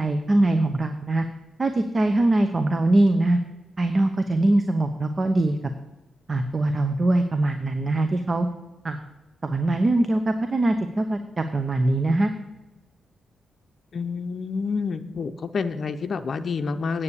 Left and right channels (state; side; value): normal; both; correlation 0.93